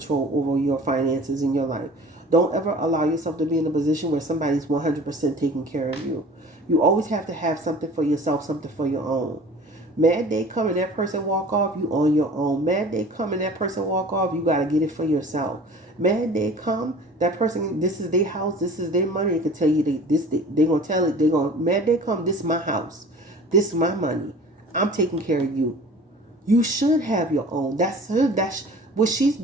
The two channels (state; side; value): normal; both; correlation 0.44